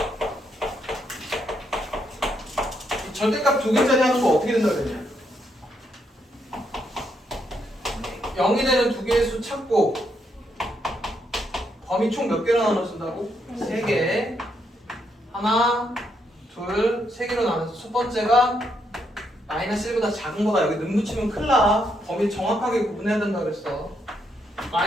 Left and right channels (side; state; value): both; normal; correlation 0.77